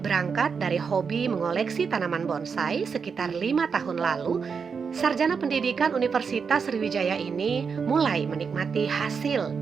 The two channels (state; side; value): quieter; left; 5.8 dB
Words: dari hobi mengoleksi tanaman bonsai sekitar 5 tahun lalu, sarjana pendidikan Universitas Sriwijaya ini mulai menikmati hasil